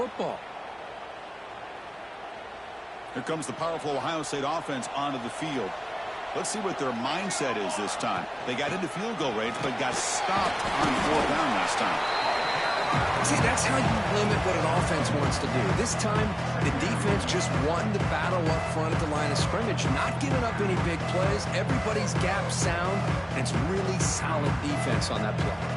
Here comes the powerful Ohio State offense onto the field. Let's see what their mindset is this time. They got into field goal range, but got stopped on fourth down last time. See, that's how you limit what an offense wants to do. This time, the defense just won the battle up front at the line of scrimmage, not giving up any big plays. Everybody's gap sound, and it's really solid defense on that play.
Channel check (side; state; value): both; identical; correlation 1.00